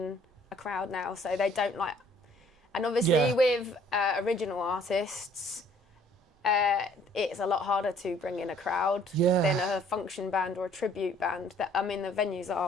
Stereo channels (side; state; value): both; normal; correlation 0.59